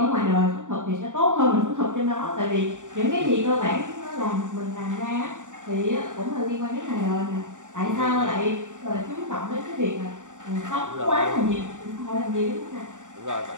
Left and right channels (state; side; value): late; left; 0.86 ms